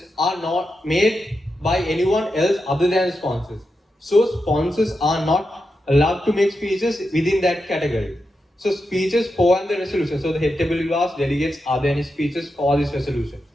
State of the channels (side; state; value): both; normal; correlation 0.88